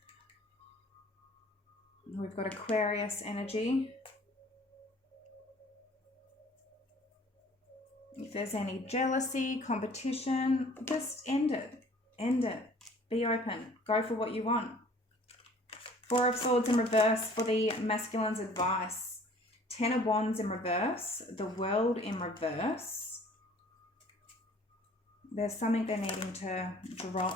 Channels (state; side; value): normal; both; correlation 0.52